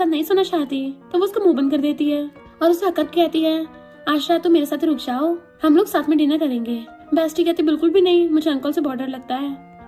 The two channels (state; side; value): identical; both; correlation 1.00